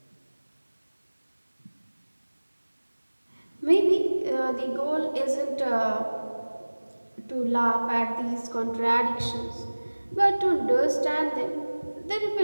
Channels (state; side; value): inverted; both; correlation -1.00